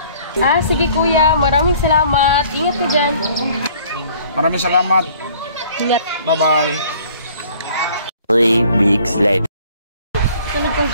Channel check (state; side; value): inverted; both; correlation -0.55